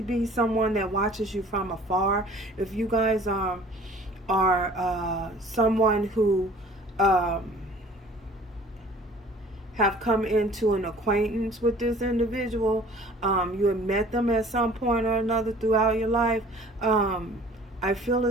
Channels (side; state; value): both; normal; correlation 0.50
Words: be someone that watches you from afar. If you guys are someone who have come into an acquaintance with this individual, you have met them at some point or another throughout your life, I feel